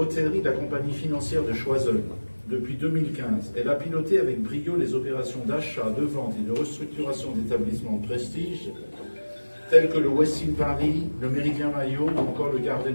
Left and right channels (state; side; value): inverted; both; correlation -1.00